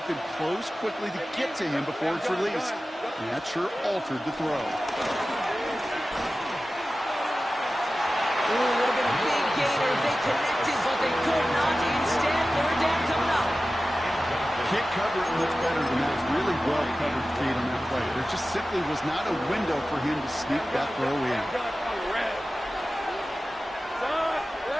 can close quickly to get to him before it's released. And that sure altered the throw. Ooh, would have been a big gainer if they connected, but they could not. Instead, third down coming up. Can't cover it much better than that. Really well covered, Kate, on that play. There just simply was not a window for him to sneak that throw in.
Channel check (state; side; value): normal; both; correlation 0.95